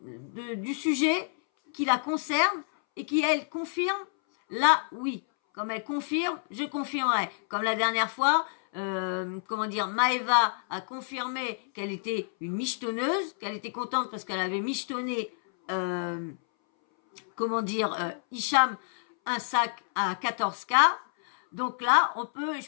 du sujet qui la concerne et qui, elle, confirme, là, oui. Comme elle confirme, je confirmerai. Comme la dernière fois, Maëva a confirmé qu'elle était une michetonneuse, qu'elle était contente parce qu'elle avait michetonné, Hicham, un sac à 14K. Donc là,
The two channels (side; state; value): right; silent; 59 dB below the other